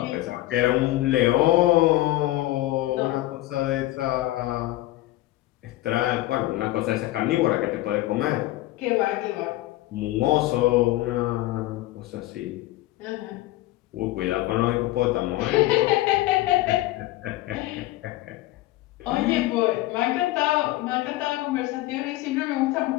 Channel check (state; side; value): quieter; right; 17.0 dB